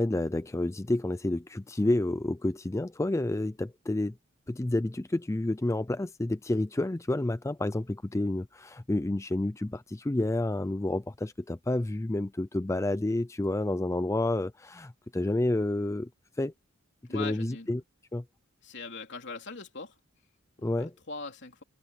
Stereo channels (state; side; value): normal; both; correlation 0.90